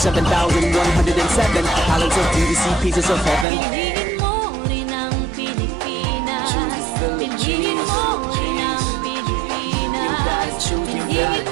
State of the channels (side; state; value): left; drops out; at 3.5 s